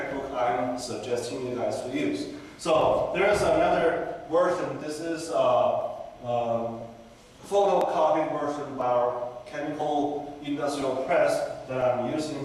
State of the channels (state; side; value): identical; both; correlation 1.00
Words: I'm suggesting you guys to use. So there is another version. This is a photocopied version by our chemical industrial press that I'm using